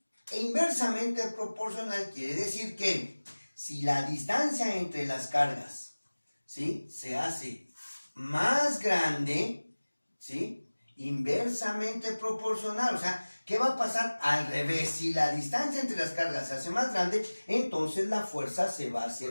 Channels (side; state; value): both; inverted; correlation -1.00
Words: inversamente proporcional quiere decir que si la distancia entre las cargas, ¿sí?, se hace más grande, ¿sí?, inversamente proporcional. O sea, ¿qué va a pasar? Al revés, si la distancia entre las cargas se hace más grande, entonces la fuerza se va a